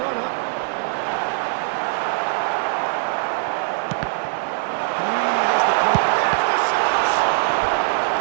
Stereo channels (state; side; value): silent; left; digital silence